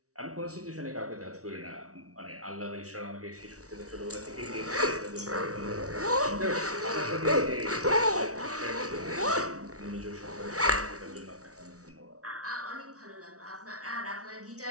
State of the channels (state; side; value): late; left; 0.66 ms